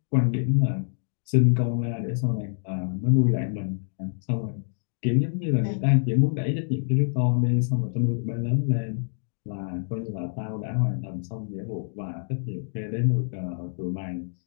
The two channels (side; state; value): right; silent; digital silence